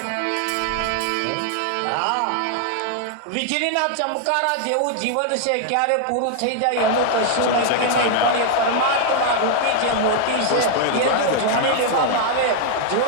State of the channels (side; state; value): both; different; correlation 0.00